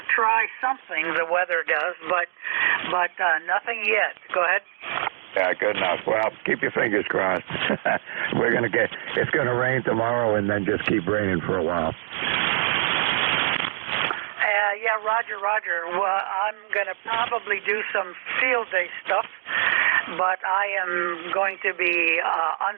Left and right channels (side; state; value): left; silent; digital silence